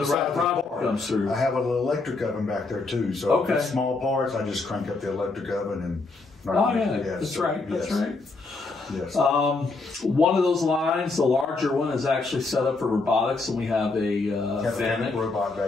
right product comes through. I have an electric oven back there too. So if it's small parts, I just crank up the electric oven and. That's right. Yes. One of those lines, the larger one, is actually set up for robotics, and we have a Fanuc robot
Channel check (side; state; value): right; quieter; 3.7 dB